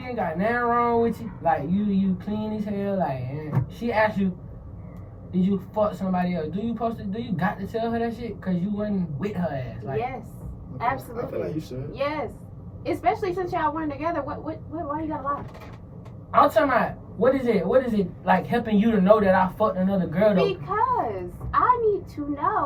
ain't got nothing wrong with you, like you clean as hell, like, and she asked you, did you fuck somebody else? Do you got to tell her that shit? Cause you wasn't with her ass. Like, Yes, I absolutely. feel like you should. Yes, especially since y'all weren't together. Why you gotta lie? I'm talking about, what is it like helping you to know that I fucked another girl though? Because I need to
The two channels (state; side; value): identical; both; correlation 1.00